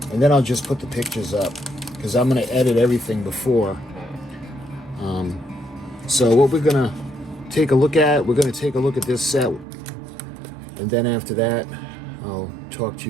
and then I'll just put the pictures up, because I'm going to edit everything before. So what we're going to take a look at, we're going to take a look at this set, and then after that, I'll talk to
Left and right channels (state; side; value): drops out; left; at 9.7 s